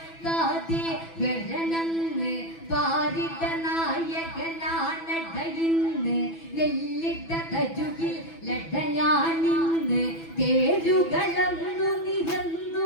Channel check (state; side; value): late; right; 6.0 ms